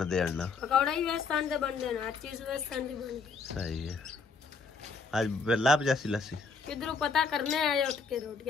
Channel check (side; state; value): right; quieter; 4.7 dB